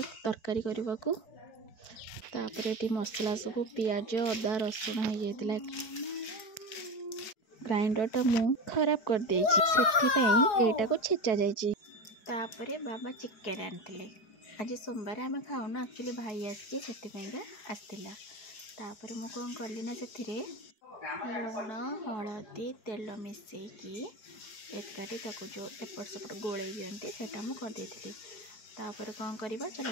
तरकारी करने को ये मसला सब पियाज अदा रसुण हो जाता ग्राइंडर टा मु खराब कर देटा को छेचा जापर बाबा चिकेन आनी आज सोमवार आम खाऊना एक्चुअली भाई आसला तापर मु कौन कली ना से लुण हलदी तेल मिसेकी एकाठी जो एपट सेपट गोले दिखते सेटा मुझे करदे तापर कौन करवा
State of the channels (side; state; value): right; late; 4.8 ms